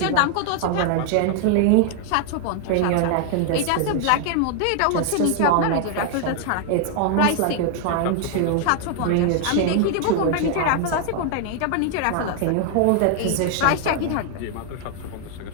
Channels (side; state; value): both; different; correlation 0.00